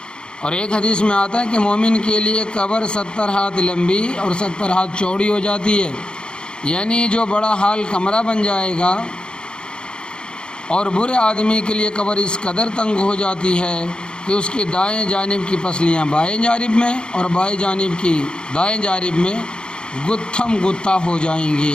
اور ایک حدیث میں آتا ہے کہ مومن کے لیے قبر 70 ہاتھ لمبی اور 70 ہاتھ چوڑی ہو جاتی ہے، یعنی جو بڑا حال کمرہ بن جائے گا، اور برے آدمی کے لیے قبر اس قدر تنگ ہو جاتی ہے کہ اس کی دائیں جانب کی پسلیاں بائیں جانب میں اور بائیں جانب کی دائیں جانب میں گتھم گتھا ہو جائیں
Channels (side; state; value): right; late; 0.050 ms